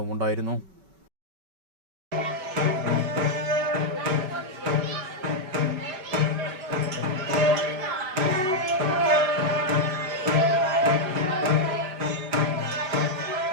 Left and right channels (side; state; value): left; late; 5.3 ms